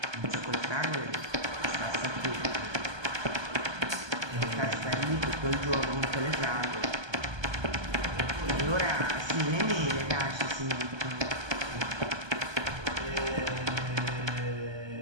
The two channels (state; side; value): late; left; 1.2 ms